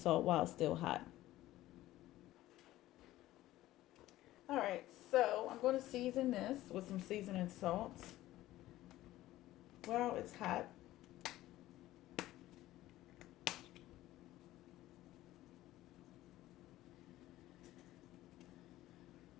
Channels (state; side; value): quieter; right; 15.6 dB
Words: while it's still hot. All right, so I'm going to season this with some seasoning salt while it's hot.